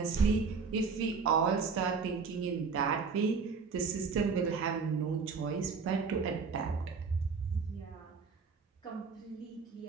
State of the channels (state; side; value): quieter; left; 5.2 dB